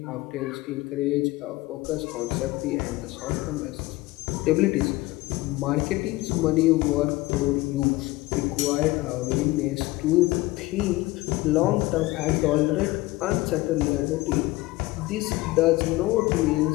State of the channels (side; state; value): right; quieter; 19.7 dB